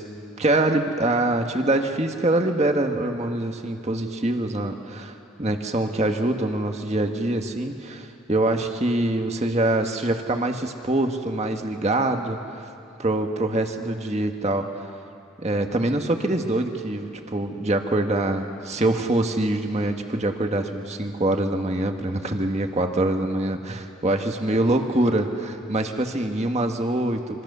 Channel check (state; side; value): normal; both; correlation 0.59